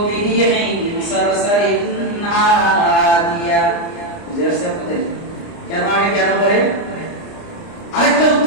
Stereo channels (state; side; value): late; right; 29 ms